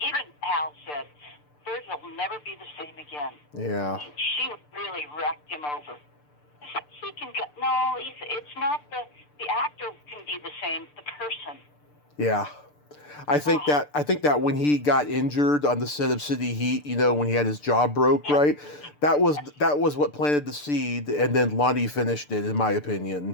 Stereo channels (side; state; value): right; late; 6.8 ms